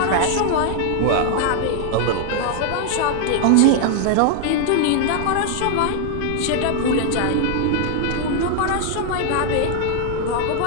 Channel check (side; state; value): both; different; correlation 0.00